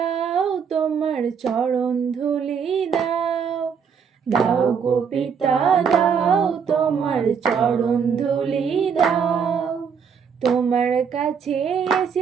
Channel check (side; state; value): left; quieter; 6.7 dB